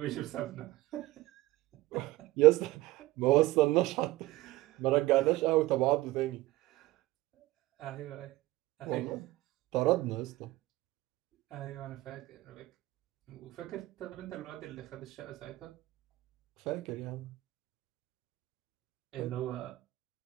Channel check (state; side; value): quieter; left; 17.9 dB